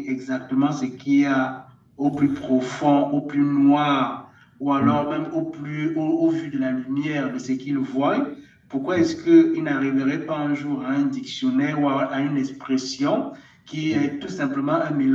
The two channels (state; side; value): identical; both; correlation 1.00